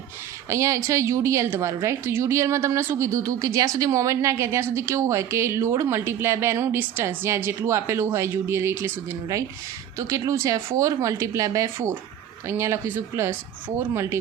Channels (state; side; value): quieter; left; 10.2 dB